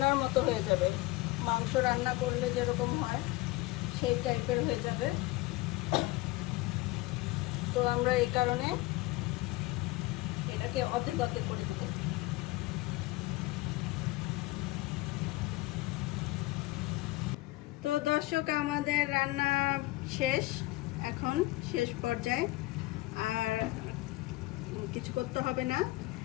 মতো হয়ে যাবে, মাংস রান্না করলে যেরকম হয় সেই টাইপের হয়ে যাবে। তো আমরা এই কারণে এটাকে অর্ধেক অর্ধেক করে দেব। তো দর্শক, আমাদের রান্না শেষ, এখন শেষ পর্যায়ে, আর কিছু করতে হবে না,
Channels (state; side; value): quieter; right; 19.9 dB